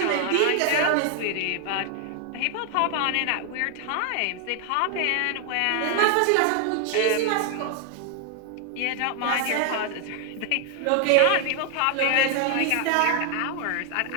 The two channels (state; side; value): different; both; correlation 0.00